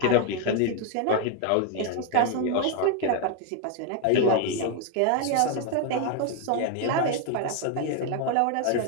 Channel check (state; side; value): different; both; correlation 0.01